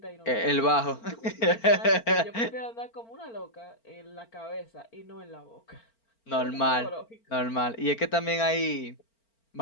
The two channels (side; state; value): right; late; 4.4 ms